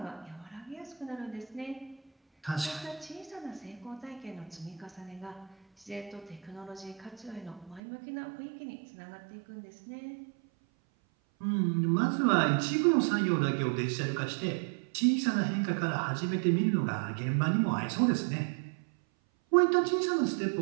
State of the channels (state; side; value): drops out; left; at 7.8 s